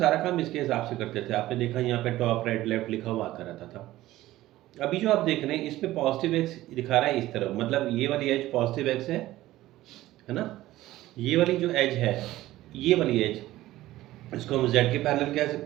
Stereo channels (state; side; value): quieter; left; 15.9 dB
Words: काम इसके हिसाब से करते थे। आपने देखा यहाँ पे टॉप राइट लेफ्ट लिखा हुआ आता रहता था। अभी जो आप देख रहे हैं इसमें पॉजिटिव एक्स दिखा रहा है इस तरफ, मतलब ये वाली एज पॉजिटिव एक्स है ना। ये वाली जो एज है, ये वाली एज, इसको हम z के पैरेलल कह